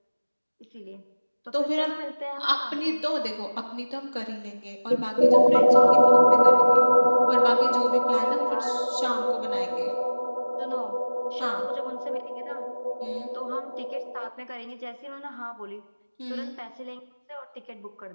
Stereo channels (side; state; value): both; inverted; correlation -1.00